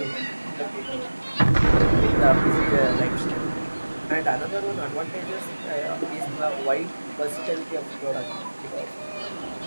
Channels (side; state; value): both; inverted; correlation -1.00